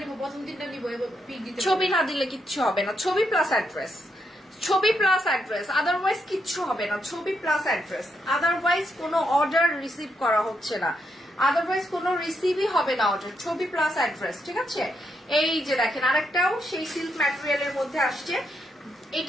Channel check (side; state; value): both; normal; correlation 0.80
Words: নিব, প্রথম 3টা নিব, এবার পিক দিতে। ছবি না দিলে কিচ্ছু হবে না, ছবি প্লাস অ্যাড্রেস, ছবি প্লাস অ্যাড্রেস, আদারওয়াইজ কিচ্ছু হবে না। ছবি প্লাস অ্যাড্রেস, আদারওয়াইজ কোনো অর্ডার রিসিভ করা হচ্ছে না, আদারওয়াইজ কোনো রিসিভই হবে না অর্ডার। ছবি প্লাস অ্যাড্রেস, ঠিক আছে। এই যে দেখেন আরেকটাও সেই সিল্ক ম্যাটেরিয়ালের মধ্যে আসছে,